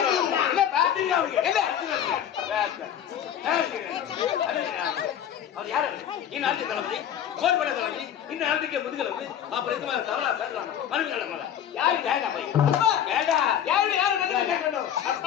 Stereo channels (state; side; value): quieter; right; 9.7 dB